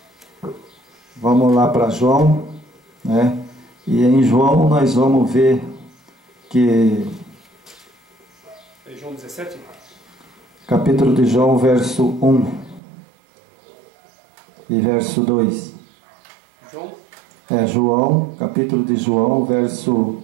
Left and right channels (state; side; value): drops out; left; at 12.8 s